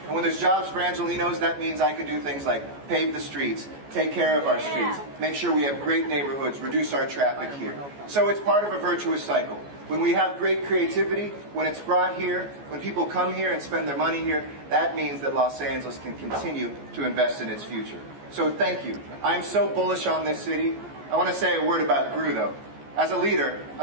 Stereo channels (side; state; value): left; late; 14 ms